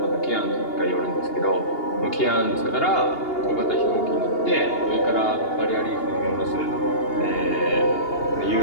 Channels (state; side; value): late; right; 2.8 ms